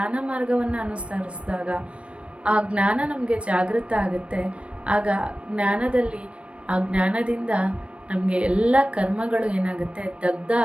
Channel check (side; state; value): left; late; 0.061 ms